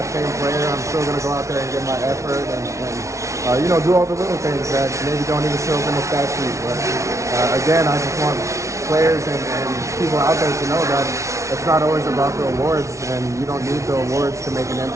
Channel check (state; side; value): late; left; 0.14 ms